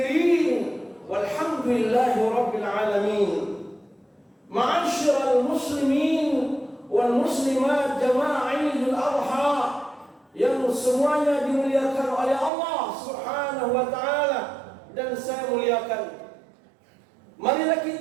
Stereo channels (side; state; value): left; drops out; at 12.5 s